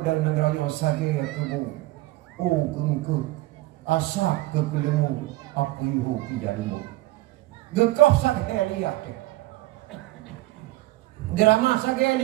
negaranya sage aku kengke asak ke kelemu aku ihu kijalimu gekau sage lihat drama sage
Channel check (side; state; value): left; quieter; 18.4 dB